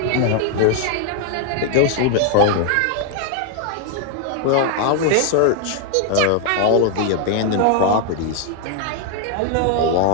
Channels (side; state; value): both; different; correlation 0.00